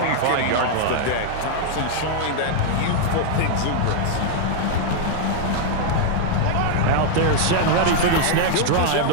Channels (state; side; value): different; both; correlation 0.00